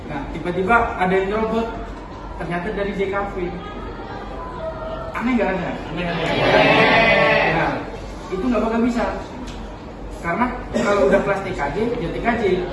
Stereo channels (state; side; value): identical; both; correlation 1.00